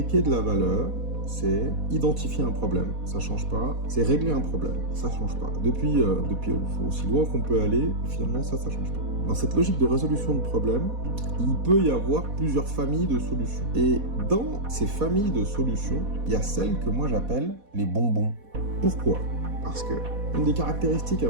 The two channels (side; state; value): left; late; 4.1 ms